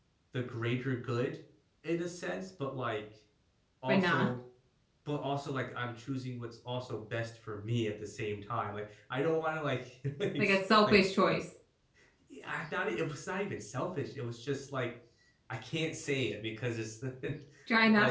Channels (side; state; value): both; identical; correlation 1.00